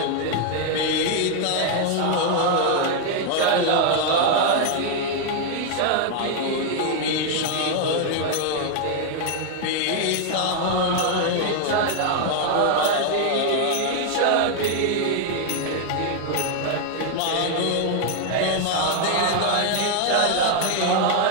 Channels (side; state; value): both; different; correlation 0.00